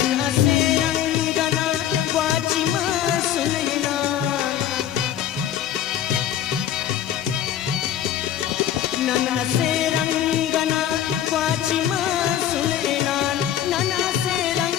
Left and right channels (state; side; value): quieter; right; 10.7 dB